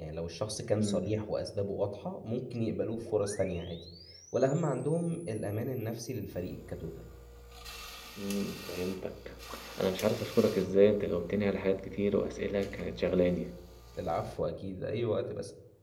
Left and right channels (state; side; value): identical; both; correlation 1.00